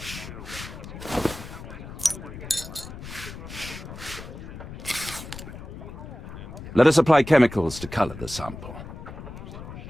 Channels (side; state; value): left; noise; rumble, 11 dB below the sound